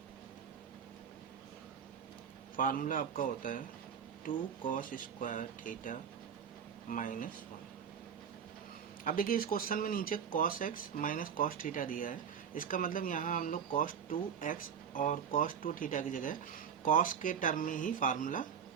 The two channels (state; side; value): quieter; left; 7.6 dB